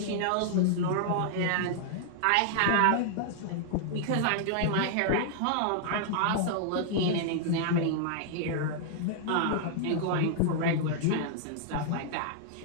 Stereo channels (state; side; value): different; both; correlation -0.01